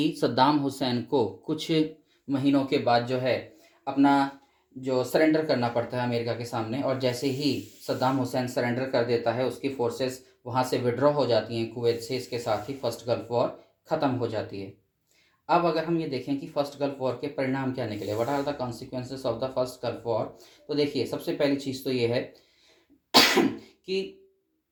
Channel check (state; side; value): identical; both; correlation 1.00